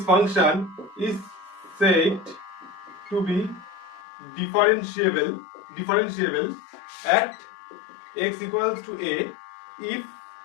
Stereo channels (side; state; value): right; drops out; at 4.0 s